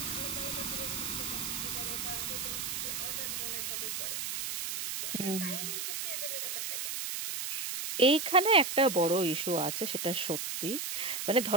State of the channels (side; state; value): right; noise; hiss, 3 dB below the sound